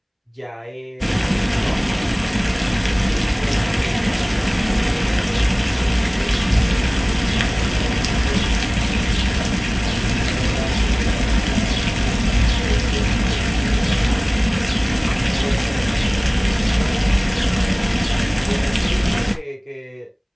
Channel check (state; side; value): identical; both; correlation 1.00